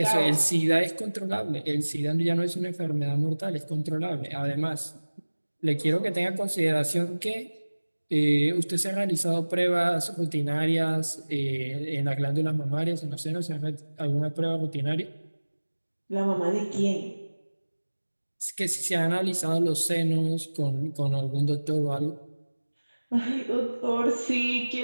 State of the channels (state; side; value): inverted; both; correlation -1.00